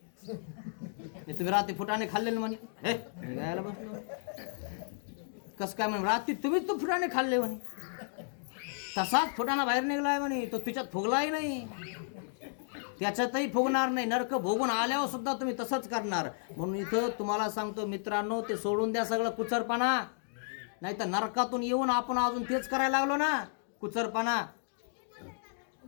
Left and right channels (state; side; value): silent; right; digital silence